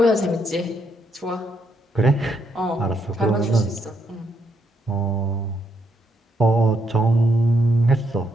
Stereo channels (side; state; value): both; normal; correlation 0.76